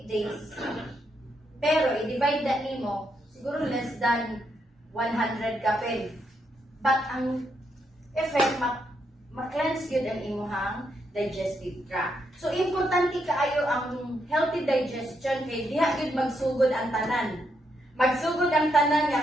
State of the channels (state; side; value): normal; both; correlation 0.79